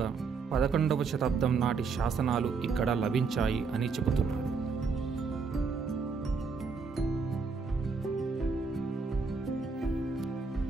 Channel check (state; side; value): quieter; left; 4.9 dB